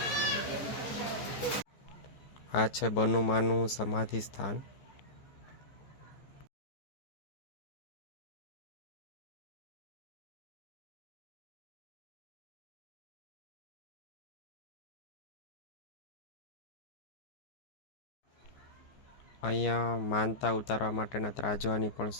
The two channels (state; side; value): late; right; 15 ms